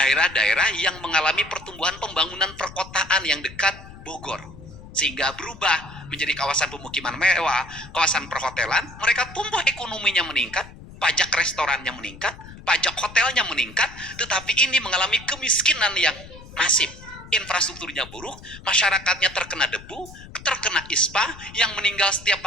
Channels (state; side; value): noise; left; rumble, 17 dB below the sound